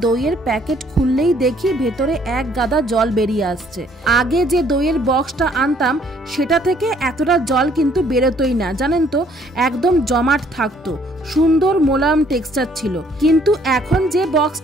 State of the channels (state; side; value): normal; both; correlation 0.63